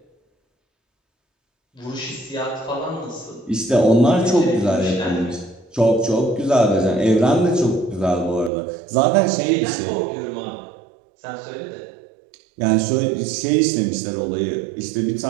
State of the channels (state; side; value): drops out; left; at 8.5 s